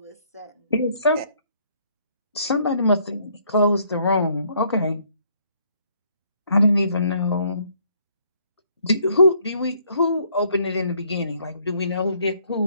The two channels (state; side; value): inverted; both; correlation -0.66